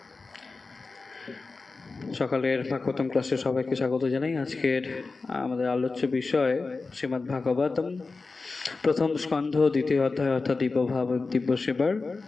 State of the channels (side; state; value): right; quieter; 3.9 dB